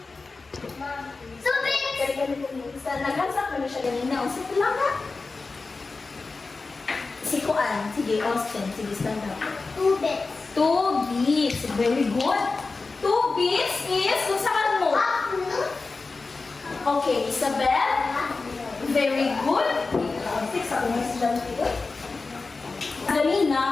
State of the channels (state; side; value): quieter; right; 3.9 dB